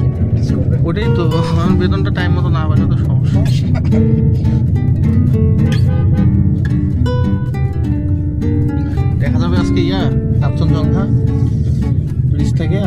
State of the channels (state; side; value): identical; both; correlation 1.00